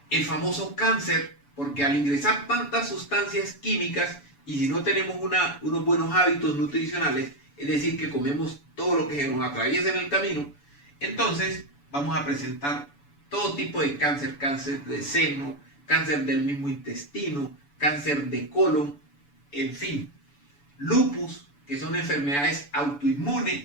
famoso cáncer, porque al ingresar tantas sustancias químicas y si no tenemos unos buenos hábitos nutricionales, es decir, que comemos todo lo que se nos atraviesa en el camino, entonces vamos a presentar todo tipo de cáncer, cáncer de seno, cáncer del mismo intestino, cáncer de colon, en fin, lupus, que son enfermedades autoinmunes,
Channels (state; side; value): late; right; 7.0 ms